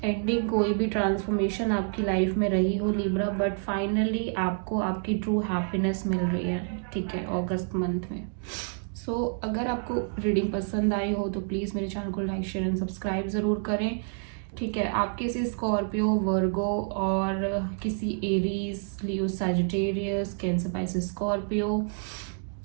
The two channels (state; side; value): silent; left; 57 dB below the other